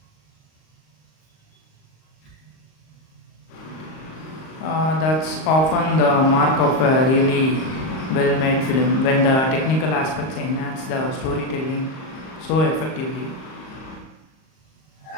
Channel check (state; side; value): late; right; 38 ms